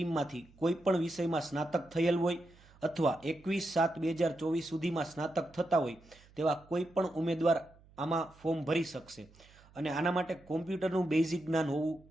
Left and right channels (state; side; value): noise; right; hum, 26 dB below the sound